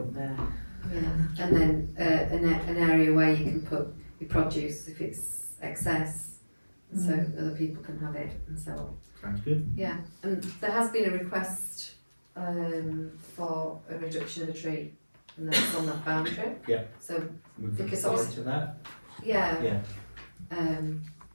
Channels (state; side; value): inverted; both; correlation -1.00